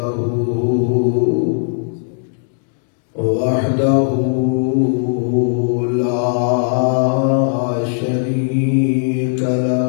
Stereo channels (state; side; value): silent; right; digital silence